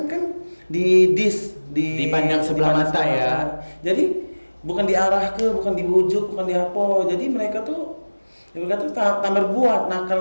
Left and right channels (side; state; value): both; inverted; correlation -1.00